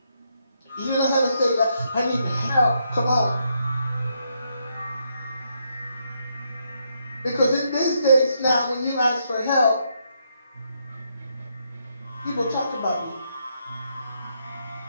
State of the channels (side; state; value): both; inverted; correlation -0.77